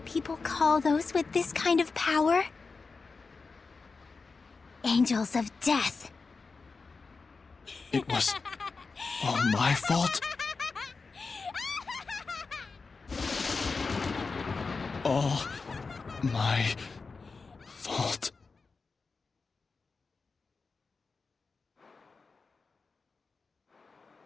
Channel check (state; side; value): quieter; right; 4.4 dB